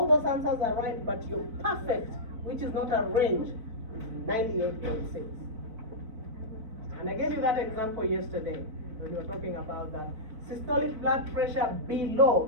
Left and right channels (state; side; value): late; left; 4.5 ms